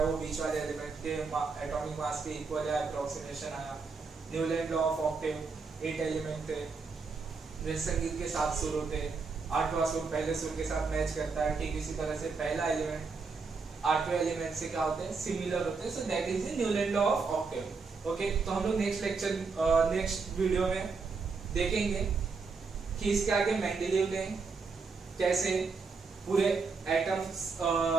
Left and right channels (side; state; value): left; quieter; 4.7 dB